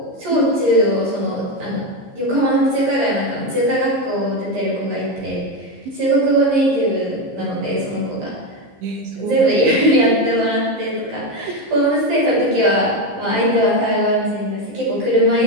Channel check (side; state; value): left; late; 15 ms